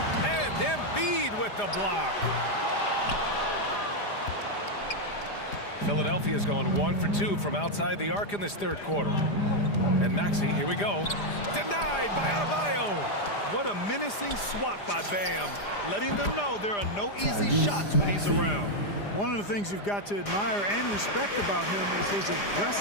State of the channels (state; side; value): late; right; 4.9 ms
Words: And Embiid with the block. Philadelphia's gone 1 for 2 from outside the arc in this third quarter. And Maxey, here we go. Denied by Adebayo. What a menacing swat by Bam, letting them know there are no easy shots when he's around. One of the things you've got to admire and respect about him is his